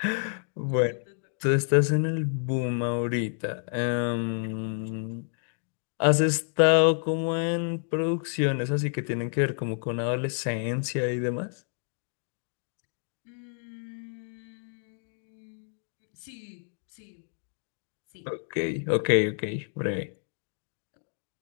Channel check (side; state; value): right; silent; digital silence